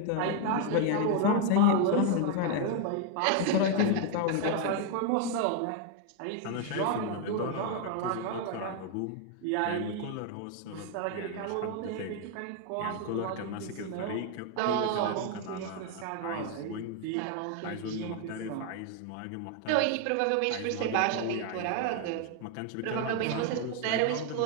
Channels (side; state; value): both; different; correlation 0.00